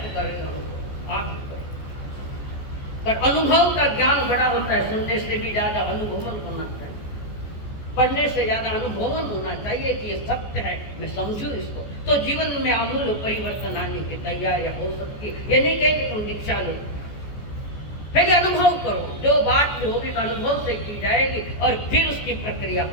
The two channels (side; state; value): right; late; 14 ms